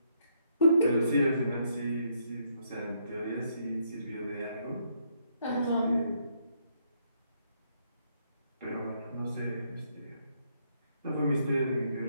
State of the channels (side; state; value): both; inverted; correlation -0.72